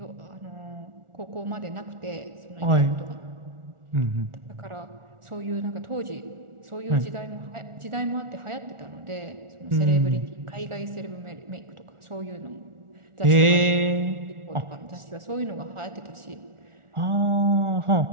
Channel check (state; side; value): late; left; 1.4 ms